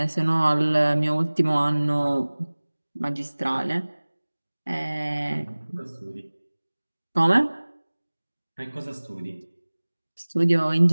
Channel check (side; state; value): both; inverted; correlation -1.00